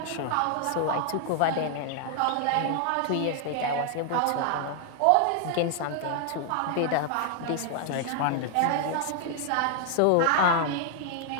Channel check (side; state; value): both; different; correlation 0.00